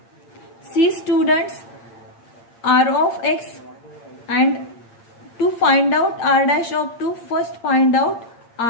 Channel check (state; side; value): late; right; 8.7 ms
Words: See students, r of x, and to find out r dash of 2, first find out